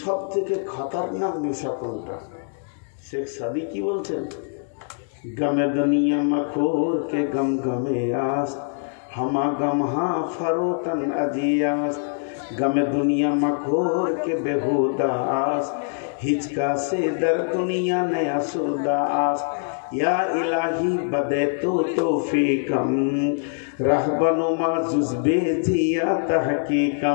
থেকে খতরনাক নেশা কোনটা? শেখ সাদি কি বলছেন? গমে দুনিয়া মখোর কে গম গমে আস, হামা গম হা ফরোতন আজিয়াস। गमे दुनिया मखोर के बेहुदास, हिचका से दर दुनिया नया सुदास। या इलाही बदे तो तौफीकम, रहबनुमा जुज़बे जिया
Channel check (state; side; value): silent; right; digital silence